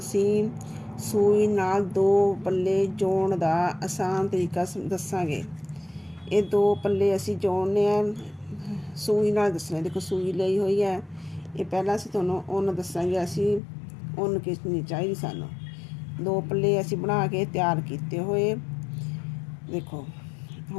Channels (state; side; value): drops out; right; at 13.6 s